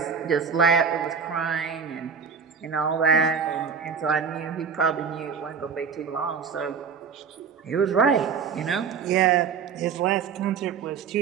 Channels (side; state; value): left; quieter; 6.2 dB